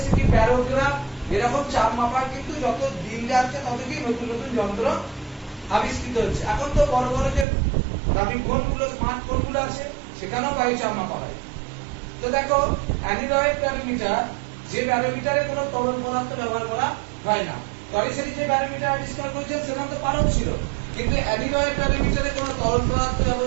কি ব্যারোগ্রাফ। এরকম চাপ মাপার কিন্তু যত দিন যাচ্ছে তত কি নতুন নতুন যন্ত্র আবিষ্কৃত হচ্ছে। এখন তো বড় বড় যে দামি ফোনগুলো, স্মার্ট ফোনগুলো আছে সেখানেও বায়ু চাপ মাপা হয়। তো দেখো অ্যানিলয়েড ব্যারোমিটার, যে ব্যারোমিটারে কোনো তরল পদার্থ ব্যবহার করা হয় না। টরিসেটি যে ব্যারোমিটার আবিষ্কার করেছেন সেখানে তো পারদ ছিল, কিন্তু অ্যানিলয়েড ব্যারোমিটারে কোনো তরল পদার্থ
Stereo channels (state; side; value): drops out; left; at 7.5 s